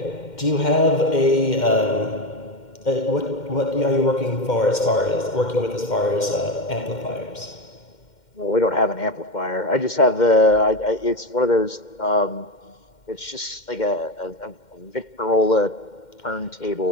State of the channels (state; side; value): late; right; 2.1 ms